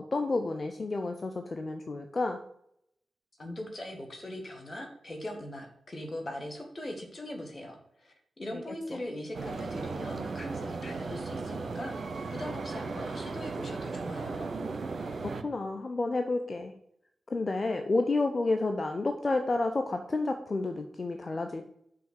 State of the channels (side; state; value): both; normal; correlation 0.92